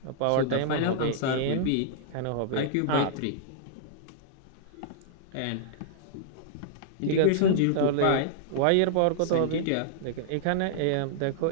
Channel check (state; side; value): different; both; correlation -0.01